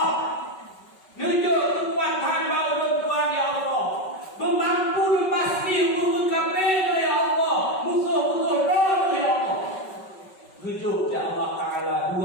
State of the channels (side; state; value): right; late; 5.3 ms